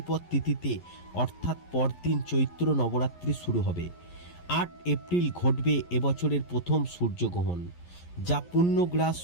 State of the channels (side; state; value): right; late; 11 ms